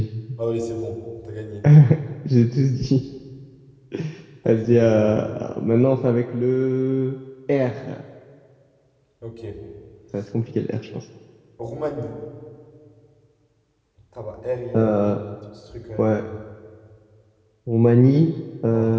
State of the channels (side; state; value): both; identical; correlation 1.00